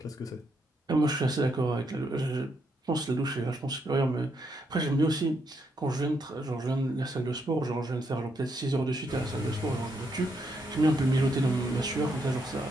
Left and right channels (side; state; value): both; normal; correlation 0.77